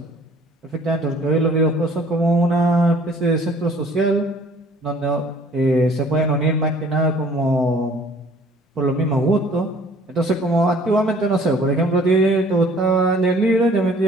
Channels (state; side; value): normal; both; correlation 0.54